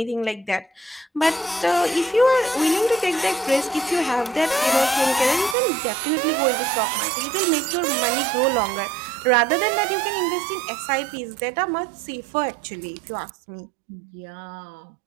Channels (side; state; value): left; drops out; at 5.6 s